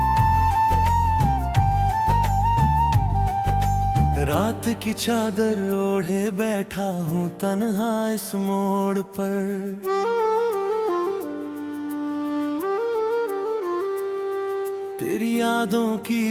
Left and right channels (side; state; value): both; identical; correlation 1.00